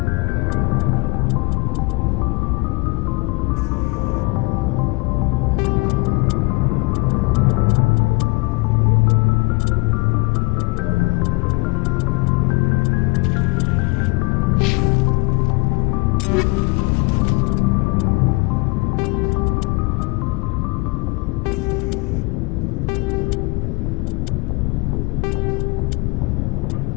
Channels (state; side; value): quieter; right; 26.9 dB